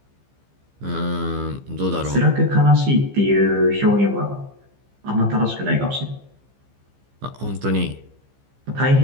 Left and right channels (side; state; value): left; late; 15 ms